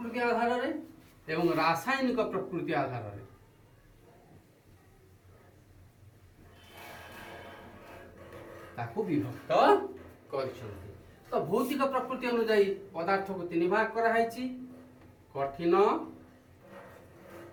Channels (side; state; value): both; identical; correlation 1.00